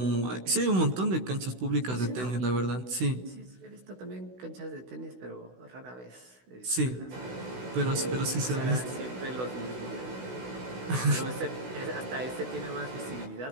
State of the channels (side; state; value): left; late; 16 ms